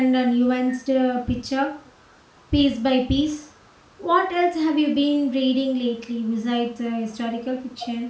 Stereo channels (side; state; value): both; identical; correlation 1.00